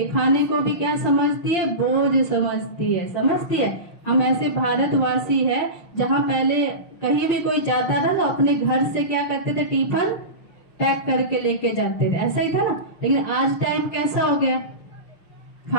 खाने को भी क्या समझती है? बोझ समझती है। समझती है? हम ऐसे भारतवासी है जहाँ पहले कहीं भी कोई जाता था तो अपने घर से क्या करते थे? टिफिन पैक करके लेके जाते थे, ऐसा ही था ना। लेकिन आज टाइम कैसा हो गया?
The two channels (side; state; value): right; late; 6.1 ms